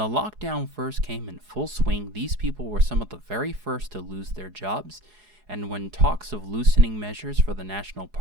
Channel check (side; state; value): left; late; 4.8 ms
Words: lockdown first came in full swing, these people were some of the very first to lose their jobs, and when talks of loosening measures for the national